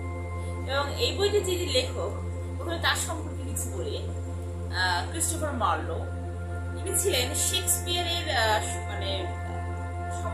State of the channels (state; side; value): identical; both; correlation 1.00